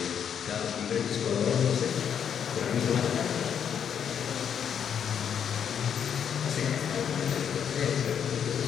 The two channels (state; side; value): quieter; right; 8.2 dB